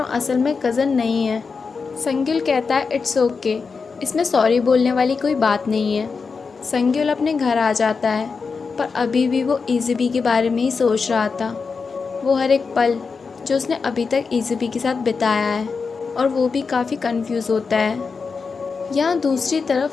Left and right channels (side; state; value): right; quieter; 5.0 dB